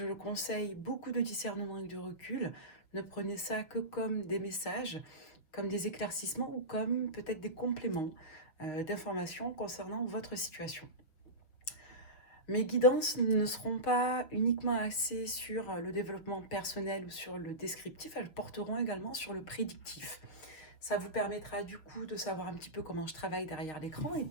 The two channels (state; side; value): late; right; 6.3 ms